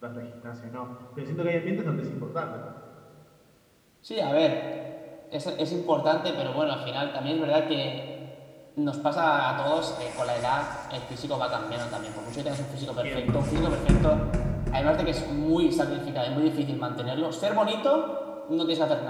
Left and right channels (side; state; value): both; identical; correlation 1.00